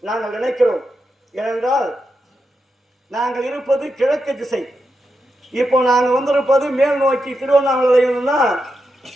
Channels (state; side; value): normal; both; correlation 0.86